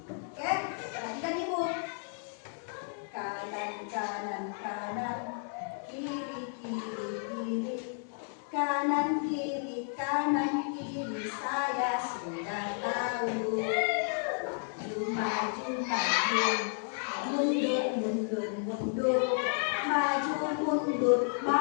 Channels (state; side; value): silent; right; 56 dB below the other